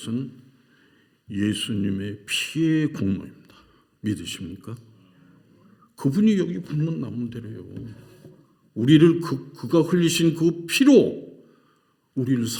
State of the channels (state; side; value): identical; both; correlation 1.00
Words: 예수님의 피의 공로입니다. 믿으십니까? 그분이 여기 붙는 나무대로요. 우리를 그가 흘리신 그 피로 우리를